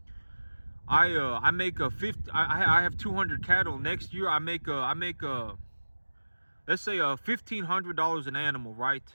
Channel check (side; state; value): both; inverted; correlation -1.00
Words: I make a 50. I have 200 cattle. Next year I make let's say $1,500 an animal, right?